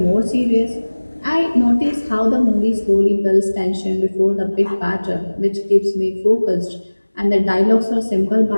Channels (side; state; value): both; inverted; correlation -1.00